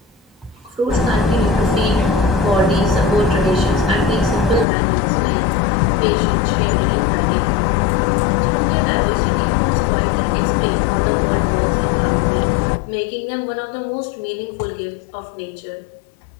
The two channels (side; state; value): right; drops out; at 4.7 s